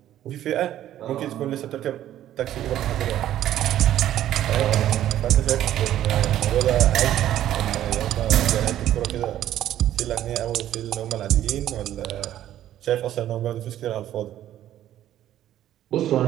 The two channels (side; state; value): left; quieter; 12.2 dB